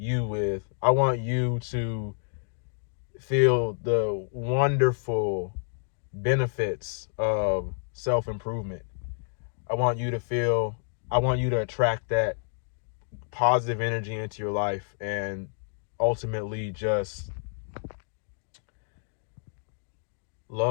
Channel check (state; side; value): silent; right; digital silence